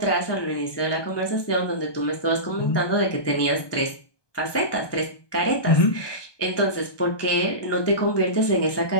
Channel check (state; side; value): late; right; 1.2 ms